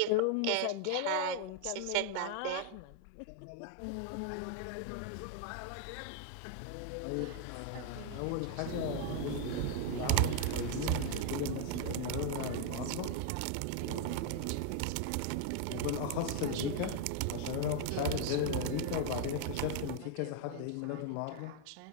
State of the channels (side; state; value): both; different; correlation 0.00